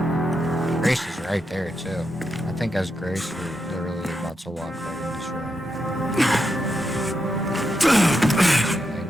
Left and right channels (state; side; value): normal; both; correlation 0.84